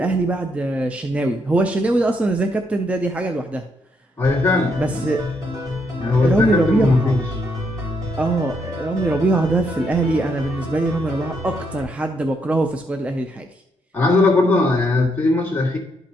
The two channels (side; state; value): both; normal; correlation 0.75